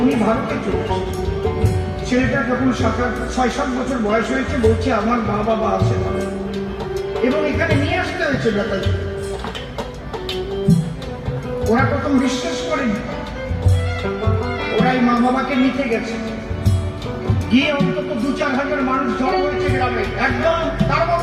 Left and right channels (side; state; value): both; identical; correlation 1.00